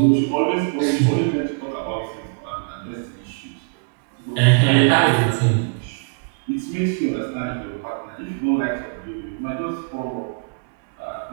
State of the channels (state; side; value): quieter; left; 39.0 dB